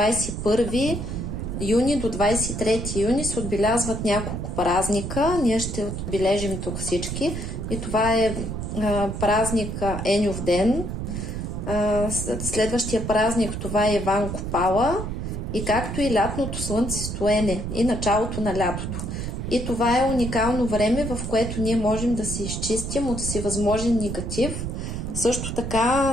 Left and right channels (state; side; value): noise; right; rumble, 4 dB below the sound